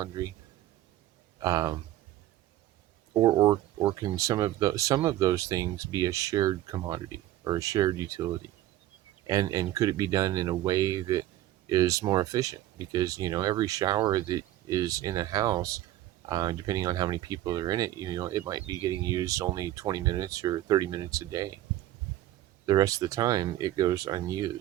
Um, or can some of those things be a shared commodity or a shared utility? And could it be done in a way that is more efficient? Because every shower that is in a house, depending on how many people are in it, it might be getting used only 20 minutes or 30 minutes a day. The rest of the time it goes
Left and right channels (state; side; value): quieter; left; 14.2 dB